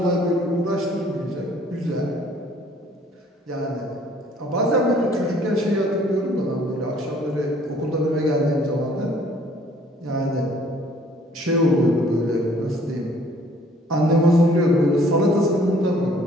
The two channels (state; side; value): normal; both; correlation 0.58